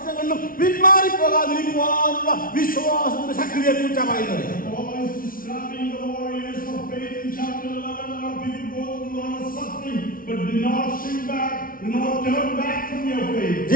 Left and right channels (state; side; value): late; right; 0.42 ms